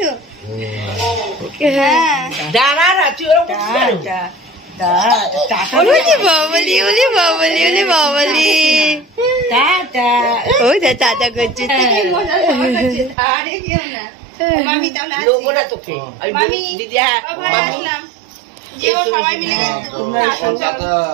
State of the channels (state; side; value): drops out; left; at 13.2 s